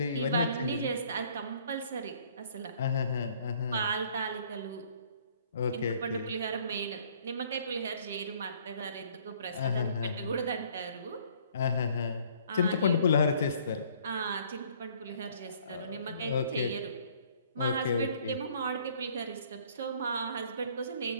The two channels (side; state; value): both; inverted; correlation -0.59